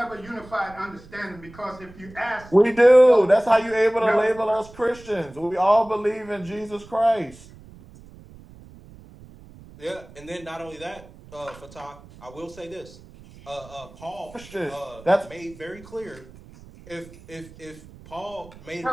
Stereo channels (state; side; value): noise; right; rumble, 21 dB below the sound